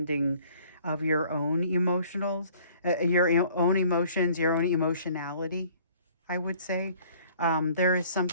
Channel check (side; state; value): both; inverted; correlation -0.55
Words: of your own emotions, your own emotionality. I would say. There is